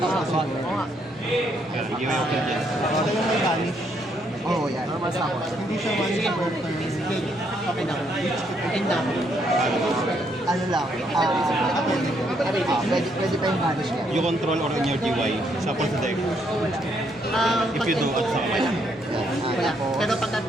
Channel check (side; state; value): both; normal; correlation 0.73